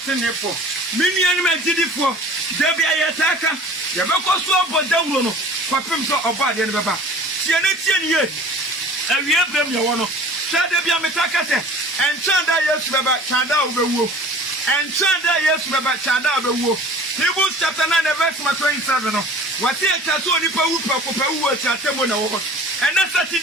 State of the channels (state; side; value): normal; both; correlation 0.45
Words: mini ani ma gidifo de bia yetaka ye be ko so bodawro no kwapem so oba de ne beba tie ne ye awie brem ye wono de bia metaka se enchanda Yesu beba chanda obewuo enchanda Yesu beba chanda obewuo Hebrews chapter 9 verse 27 no wati echa so onipa wu pakopawu ati atemo na wo and that